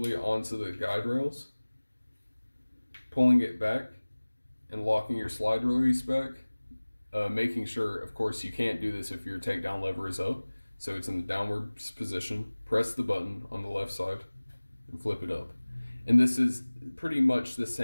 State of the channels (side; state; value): both; inverted; correlation -1.00